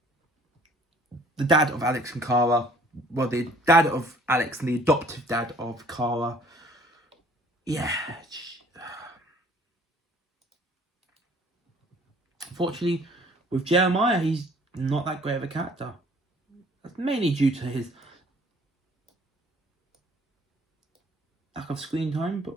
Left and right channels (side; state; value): both; normal; correlation 0.55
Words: the dad of Alex and Kara. Well, the dad of Alex and the adoptive dad of Kara. Yeah. Unfortunately, with Jeremiah, he's not that great of a character. That's mainly due to his lack of screen time,